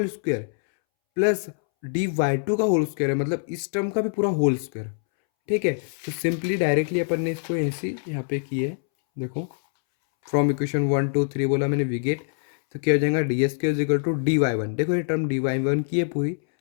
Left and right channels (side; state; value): right; silent; 62 dB below the other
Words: square, plus D Y two का होल स्क्वायर है, मतलब इस टर्म का भी पूरा होल स्क्वायर, ठीक है। तो सिंपली डायरेक्टली अपन ने इसको ऐसे यहाँ पे किया है, देखो from equation one two three बोला मैंने वी गेट, तो क्या हो जाएगा, d s square is equal to d Y one, देखो ये टर्म डी वाई वन की है पूरी,